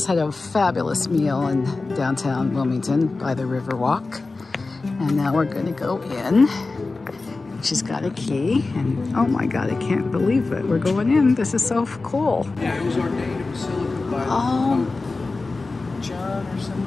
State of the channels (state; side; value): quieter; right; 3.6 dB